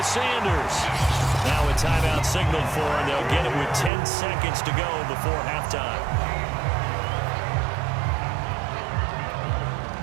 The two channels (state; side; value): drops out; left; at 3.9 s